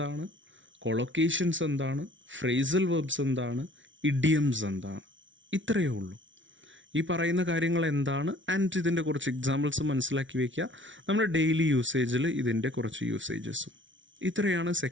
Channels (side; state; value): left; late; 0.56 ms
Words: കൊളൊക്കേഷൻസ് എന്താണ്, ഫ്രേസൽ വെർബ്സ് എന്താണ്, ഇഡിയംസ് എന്താണ്, ഇത്രയേ ഉള്ളൂ. ഈ പറയുന്ന കാര്യങ്ങൾ എന്താണ് ആൻഡ് ഇതിൻ്റെ കുറച്ച് എക്സാമ്പിൾസ് മനസ്സിലാക്കി വയ്ക്കുക. നമ്മുടെ ഡെയിലി യൂസേജിൽ ഇതിൻ്റെ കുറച്ച് യൂസേജസും. ഇത്രയാണ്